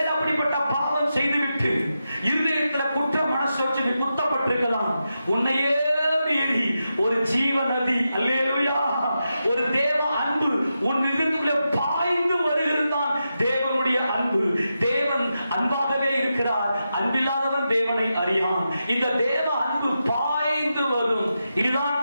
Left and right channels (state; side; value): inverted; both; correlation -0.88